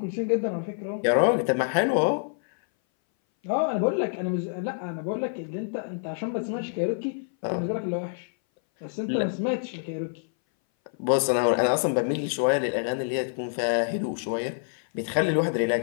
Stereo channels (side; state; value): right; silent; 59 dB below the other